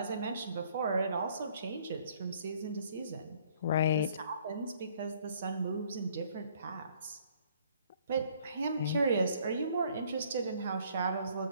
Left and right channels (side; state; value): both; inverted; correlation -0.61